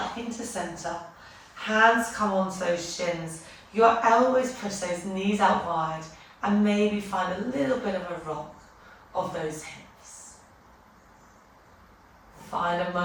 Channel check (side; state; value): both; identical; correlation 1.00